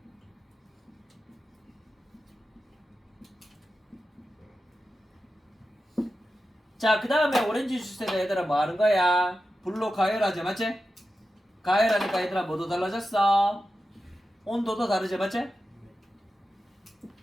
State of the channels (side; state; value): both; normal; correlation 0.92